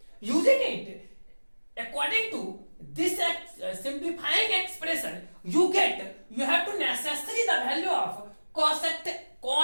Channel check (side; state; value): both; inverted; correlation -1.00